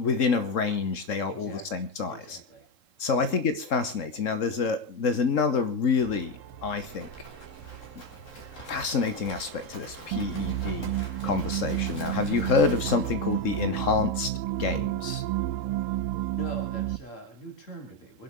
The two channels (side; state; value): right; late; 3.7 ms